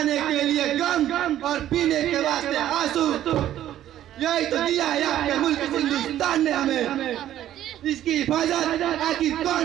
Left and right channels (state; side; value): quieter; left; 12.2 dB